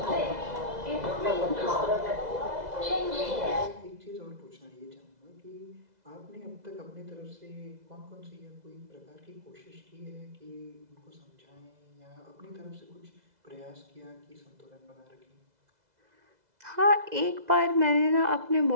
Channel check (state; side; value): late; left; 2.0 ms